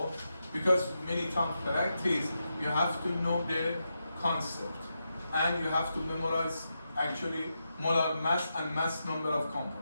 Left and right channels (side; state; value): both; inverted; correlation -0.86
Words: because many times practice, you have to know the concept, and you have to memorize actually molar mass and mass number of